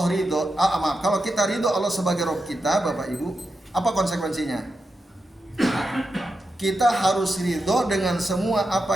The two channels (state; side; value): normal; both; correlation 0.88